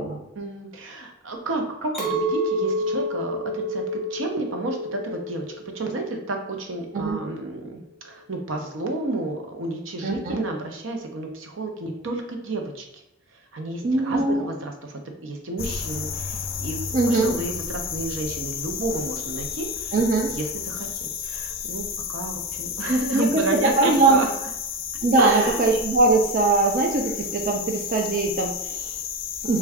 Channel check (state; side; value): normal; both; correlation 0.20